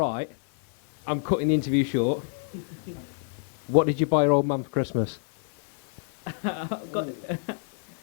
I'm cutting the interview short. What did you buy your old man for Christmas? I got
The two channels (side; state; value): right; silent; 56 dB below the other